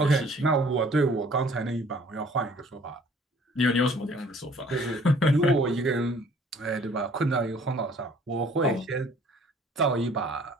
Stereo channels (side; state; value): both; normal; correlation 0.55